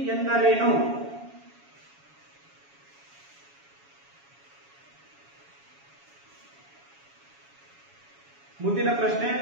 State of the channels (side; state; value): left; late; 7.2 ms